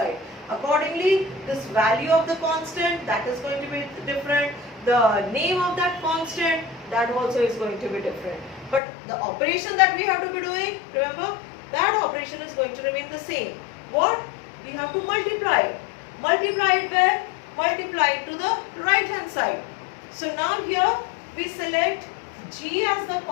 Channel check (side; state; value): right; drops out; at 8.8 s